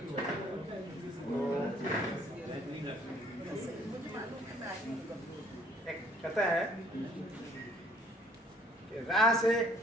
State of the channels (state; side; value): normal; both; correlation 0.59